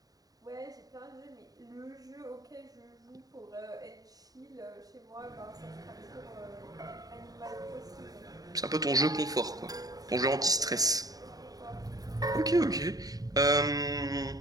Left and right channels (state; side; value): late; left; 0.18 ms